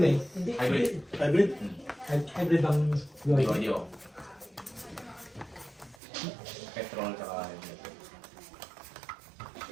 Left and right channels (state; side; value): drops out; left; at 6.0 s